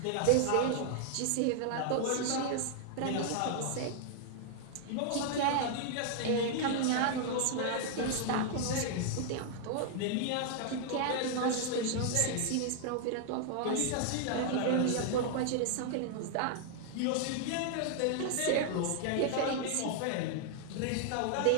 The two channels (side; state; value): both; different; correlation 0.00